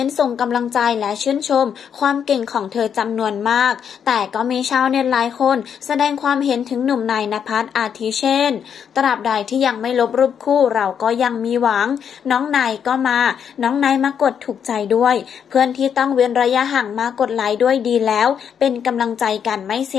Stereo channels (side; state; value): right; quieter; 7.9 dB